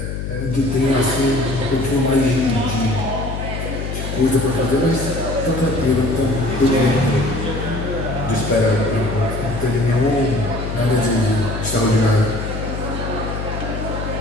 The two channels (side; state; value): left; noise; hum, 5 dB below the sound